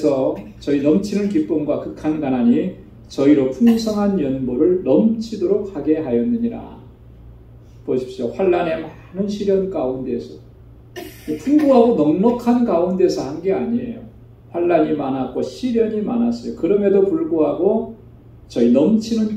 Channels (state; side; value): identical; both; correlation 1.00